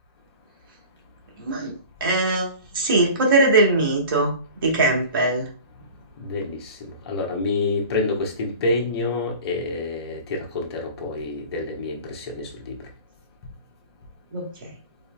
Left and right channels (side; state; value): both; inverted; correlation -0.38